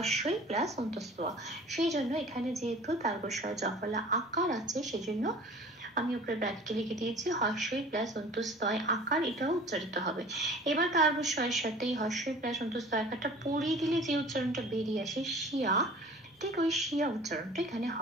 প্লাস অন্তস্থ। সেই জন্য এখানে যেহেতু তার্গ জফলা আকার আছে সেজন্য আমি উপরে ব্র্যাকেটে লিখে দিয়েছি হস্যই প্লাস অন্তস্তয় আকার, এটাও উচ্চারিত হবে। এবার তার্বস্বয়ের সাথে এই হস্যই প্লাস অন্তস্তয় আকারটা পড়িয়ে দিলে যে উচ্চারণটা বেরিয়ে আসে শিয়া, ঠিক ওই শিয়া উচ্চারণটা এখানে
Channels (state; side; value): normal; both; correlation 0.45